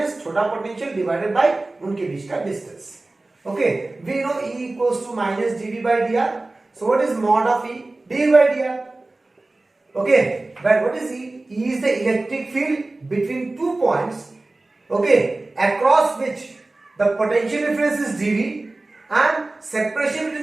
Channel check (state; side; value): quieter; left; 3.0 dB